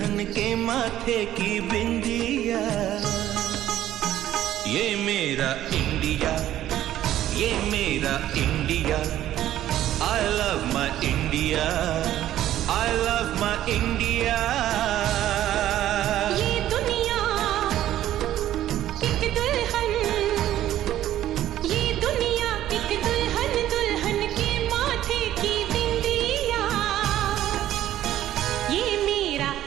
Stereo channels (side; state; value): left; quieter; 12.8 dB